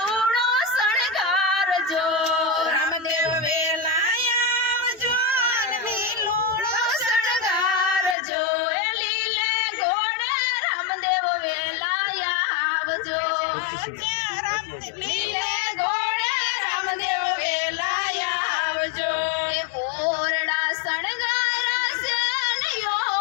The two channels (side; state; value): right; drops out; at 8.2 s